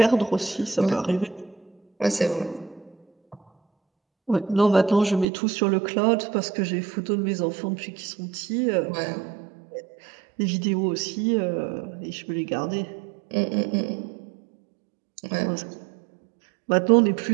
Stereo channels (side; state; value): left; drops out; at 5.2 s